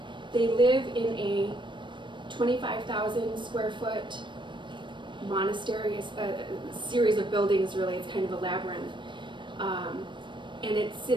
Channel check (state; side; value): late; left; 0.23 ms